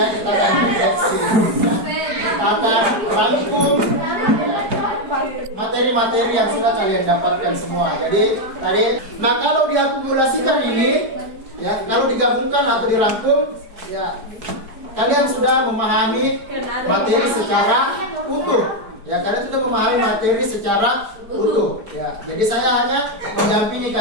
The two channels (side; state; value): left; late; 4.7 ms